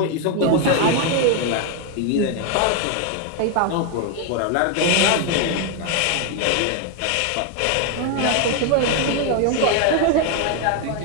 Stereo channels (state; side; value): different; both; correlation 0.01